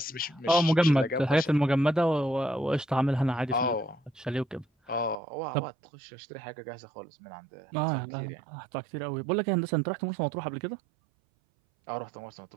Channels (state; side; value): drops out; left; at 5.2 s